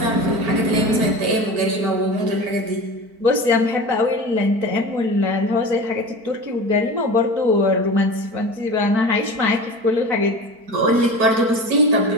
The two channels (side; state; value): left; late; 4.5 ms